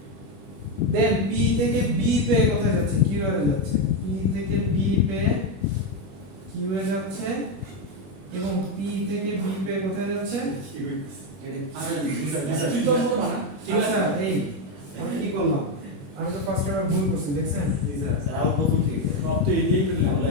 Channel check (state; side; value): late; left; 21 ms